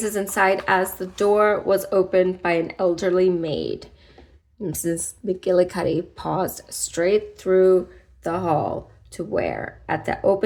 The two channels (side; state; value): both; identical; correlation 1.00